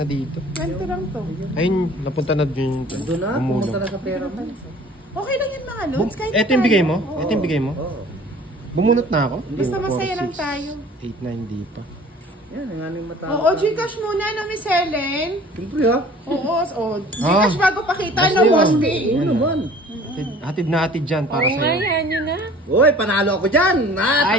dito. 20 lang to. Ayun, napunta na din. Doon na, pumunta na sa pera mo. Okay lang yan mga lods. Kahit Ito yung bigay mo? tayo. Ito yung bigay mo? Oo. Bumunot na ako? Basta masaya lang tayo. 8, 9, di pa. Yan, ang aming mata. Oo, Gcash muna no, Miss Helen. Siyempre ha. Oo, Gcash bago pakita, no, Basta Boss yun. B. Oo naman. Hatid na hatid dyan para Oo nga, sa'yo. yan yun na. Uy, panalo ako dyan.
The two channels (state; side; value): normal; both; correlation 0.48